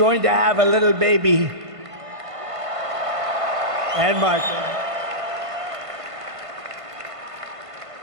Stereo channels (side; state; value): left; late; 1.5 ms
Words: to have a little baby. And Michael.